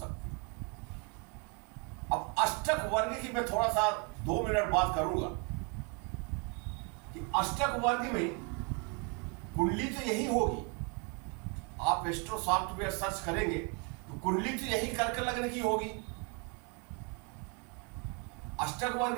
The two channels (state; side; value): quieter; left; 34.4 dB